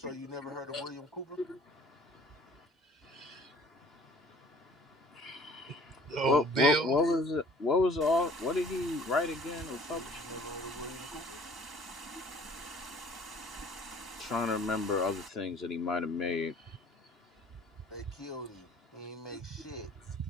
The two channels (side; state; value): both; normal; correlation 0.52